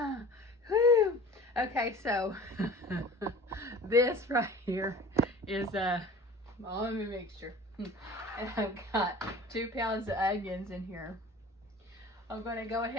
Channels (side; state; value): both; normal; correlation 0.42